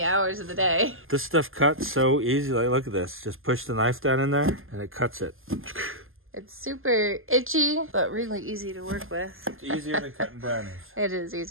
hours of the day. This stuff cuts so easy. Like, look at this. Just push the knife down in there and it cuts it. It's super itchy, but really easy to work with. It's easier than cutting brownies. It is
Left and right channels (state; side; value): late; left; 0.59 ms